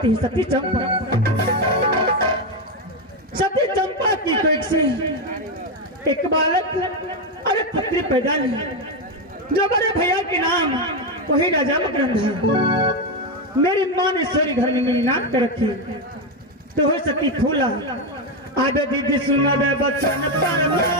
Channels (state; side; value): normal; both; correlation 0.08